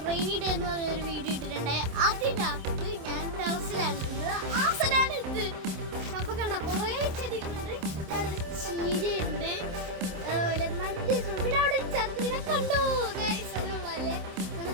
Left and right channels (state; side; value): late; left; 27 ms